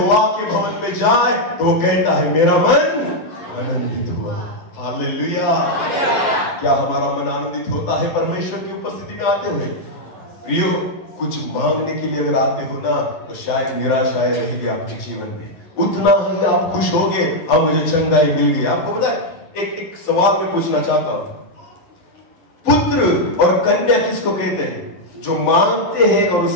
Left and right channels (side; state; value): right; late; 11 ms